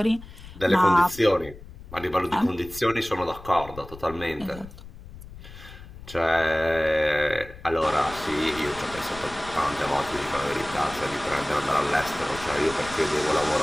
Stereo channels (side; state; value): left; noise; rumble, 16 dB below the sound